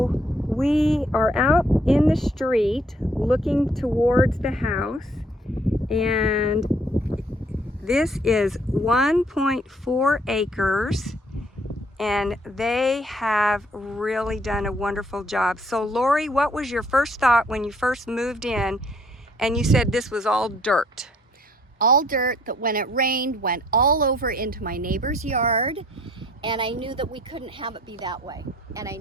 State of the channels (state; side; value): normal; both; correlation 0.63